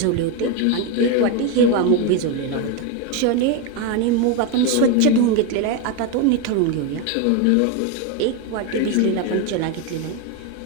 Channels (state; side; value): different; both; correlation 0.02